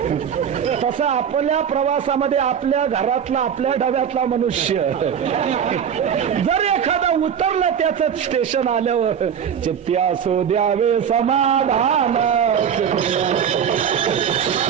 तसं आपल्या प्रवासामध्ये आपल्या घरातला, आपल्या डब्यातला मनुष्य जर एखादा उतरला त्याचं स्टेशन आल्यावर, चित्त्या सो द्यावे समाधान,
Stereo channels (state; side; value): quieter; left; 8.1 dB